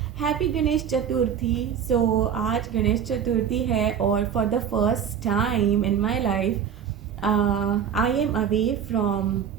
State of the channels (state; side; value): quieter; left; 8.1 dB